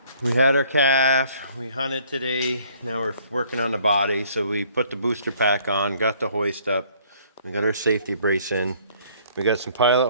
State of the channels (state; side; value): inverted; both; correlation -0.60